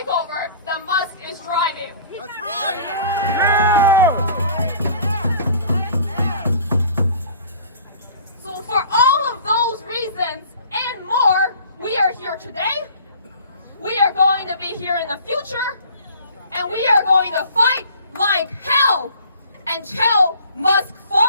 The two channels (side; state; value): both; inverted; correlation -0.49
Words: that Musk is driving. That's right. So for all of those reasons and more, we are here today. We are going to be here in the future, and we are going to fight like hell until Musk